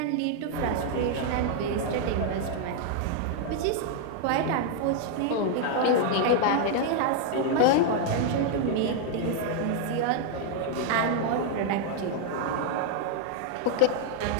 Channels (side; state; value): both; different; correlation 0.00